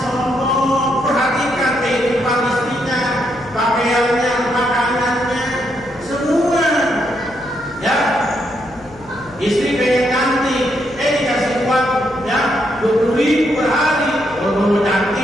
Perhatikan kehidupan istrinya, pakaiannya, makanannya, semua. Ya, istri pengen cantik, dikasih uang, ya 20.000 per hari. Kalau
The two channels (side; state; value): left; noise; hum, 23 dB below the sound